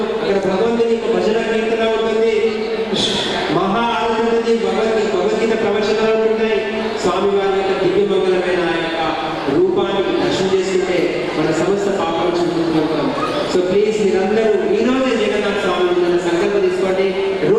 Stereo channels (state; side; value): identical; both; correlation 1.00